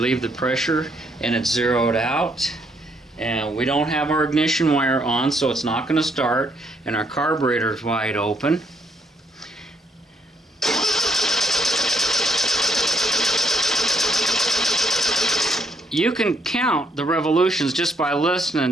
the pressure and it's zeroed out. And we don't have our ignition wire on, so it's not going to start. And our carburetor is wide open. You can count the revolutions just by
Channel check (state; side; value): normal; both; correlation 0.72